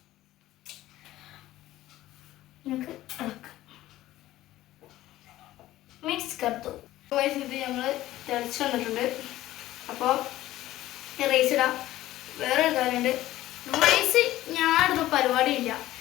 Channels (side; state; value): right; quieter; 15.3 dB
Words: നമുക്ക് മിക്സ് കറുത്തു. ഗൈസ് ഇത് നമ്മൾ തിളച്ച് വന്നിട്ടുണ്ട്. അപ്പോൾ റൈസ് ഇടാം. വേറൊരു കാര്യമുണ്ട്, റൈസ് ഞാനിടുന്ന പരിപാടിയില്ല.